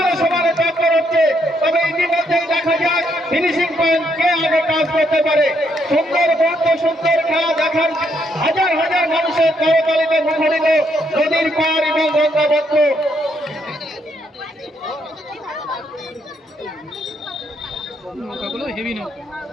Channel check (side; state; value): both; normal; correlation 0.74